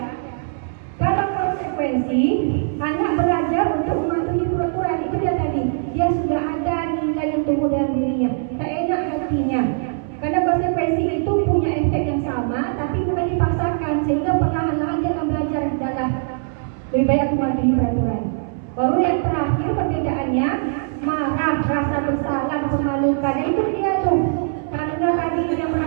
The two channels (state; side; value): silent; left; 65 dB below the other